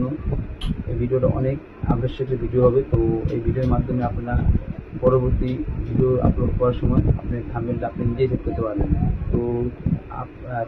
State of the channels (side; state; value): both; identical; correlation 1.00